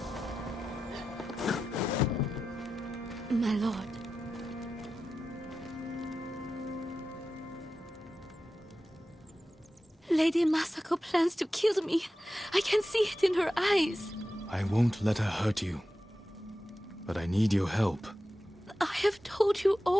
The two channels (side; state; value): both; normal; correlation 0.92